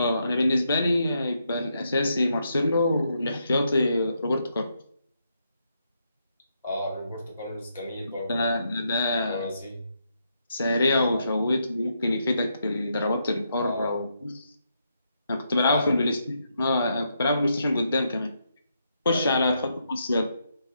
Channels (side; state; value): both; inverted; correlation -0.79